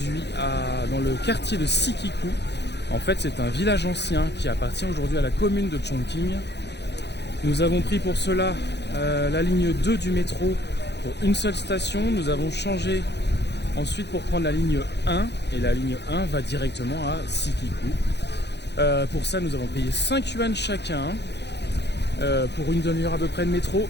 dans le quartier de Sikiku. En fait, c'est un village ancien qui appartient aujourd'hui à la commune de Chongqing. Nous avons pris pour cela la ligne 2 du métro pour une seule station. Nous avons changé ensuite pour prendre la ligne 1 et la ligne 1 va directement à Sikiku. Pour ça, nous avons payé 5 yuan chacun. Pour une demi-heure à peu près de métro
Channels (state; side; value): late; right; 0.50 ms